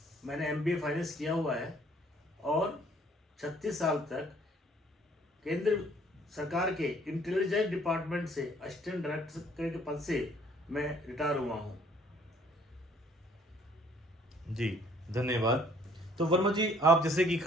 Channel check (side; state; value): both; normal; correlation 0.60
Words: मैंने MBA फाइनेंस किया हुआ है और 36 साल तक केंद्र सरकार के इंटेलिजेंस डिपार्टमेंट से असिस्टेंट डायरेक्टर के पद से मैं रिटायर हुआ हूँ। जी धन्यवाद। तो वर्मा जी, आप जैसे कि